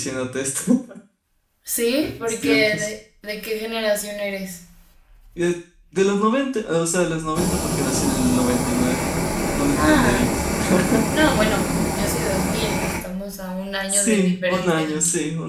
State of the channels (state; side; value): identical; both; correlation 1.00